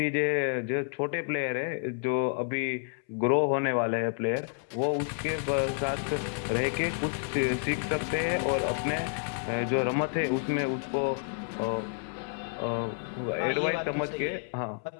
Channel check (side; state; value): right; silent; 58 dB below the other